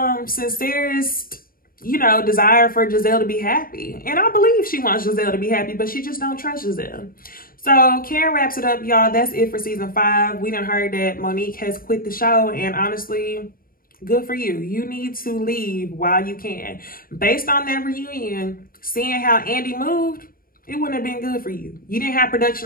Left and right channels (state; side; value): late; right; 0.42 ms